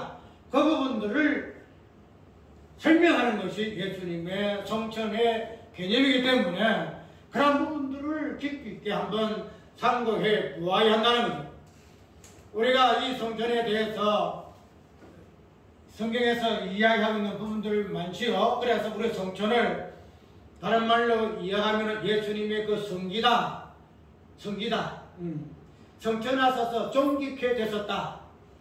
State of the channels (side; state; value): both; identical; correlation 1.00